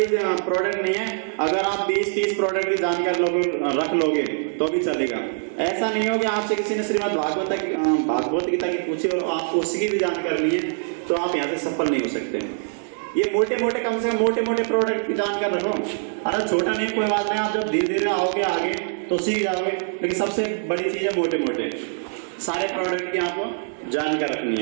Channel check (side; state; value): left; silent; digital silence